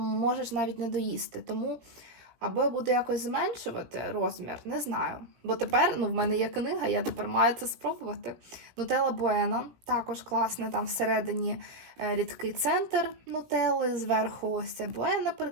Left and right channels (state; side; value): late; left; 17 ms